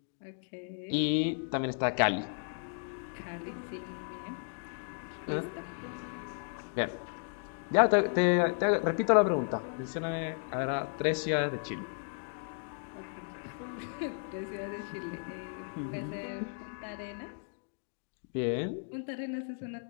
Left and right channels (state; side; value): silent; right; digital silence